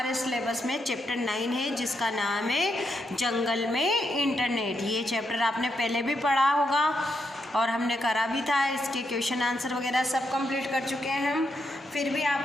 सिलेबस में चैप्टर 9 है जिसका नाम है जंगल में इंटरनेट। ये चैप्टर आपने पहले भी पढ़ा होगा और हमने करा भी था। इसके क्वेश्चन आंसर वगैरह सब कंप्लीट कर चुके हैं हम। फिर भी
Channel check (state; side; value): normal; both; correlation 0.81